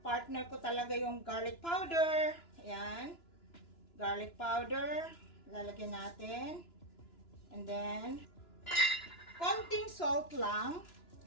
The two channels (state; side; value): late; right; 2.9 ms